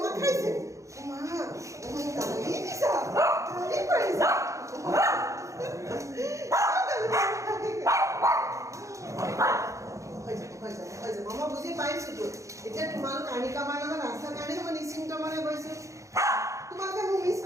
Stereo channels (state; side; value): late; left; 0.15 ms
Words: খাইছে মা গালি দিছা গালি পাৰিছা মই বুজি পাইছোতো এতিয়া তোমালোক আনিকাবাৰ লগত ৰাস্তাৰ কাৰণে মই নিশ্চিন্ত মনে গৈছো তোমালোকে মোক মিছ